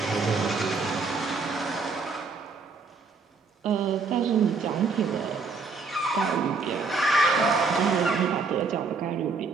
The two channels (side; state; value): left; quieter; 4.4 dB